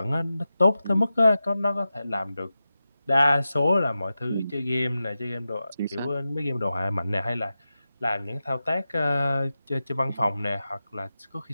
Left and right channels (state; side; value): inverted; both; correlation -0.92